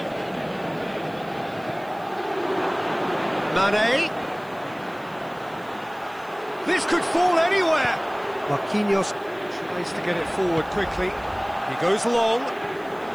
Mane. This could fall anywhere. Marquinhos tries to get it forward quickly. He goes long,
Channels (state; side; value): noise; right; hiss, 28 dB below the sound